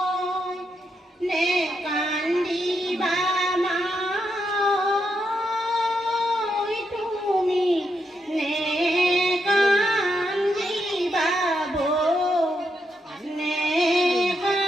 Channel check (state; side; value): normal; both; correlation 0.81